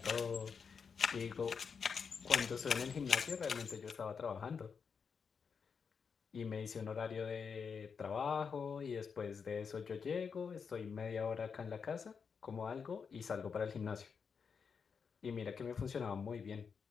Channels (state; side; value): quieter; right; 6.0 dB